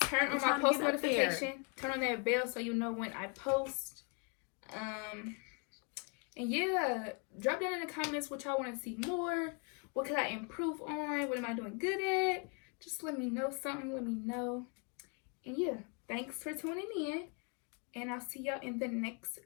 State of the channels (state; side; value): quieter; right; 34.8 dB